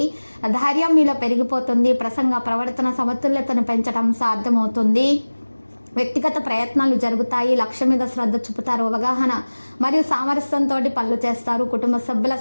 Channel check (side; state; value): both; inverted; correlation -1.00